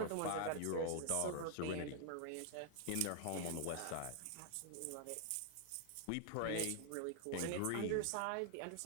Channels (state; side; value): different; both; correlation 0.00